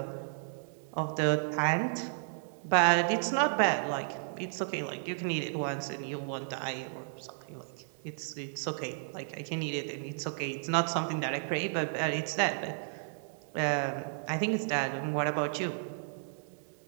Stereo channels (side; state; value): left; silent; digital silence